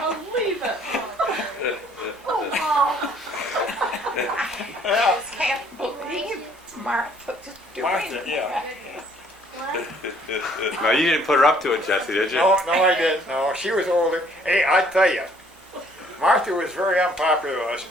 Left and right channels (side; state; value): both; normal; correlation 0.61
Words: believe it. I can't believe Martha's doing Martha, yeah. No, you didn't put her up to it, Jesse, did you? No, I didn't. No, she was older. Hey, I tell you, Martha was very unpopular with us